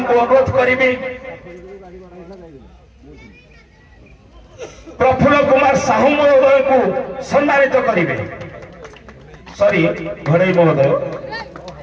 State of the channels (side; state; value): both; identical; correlation 1.00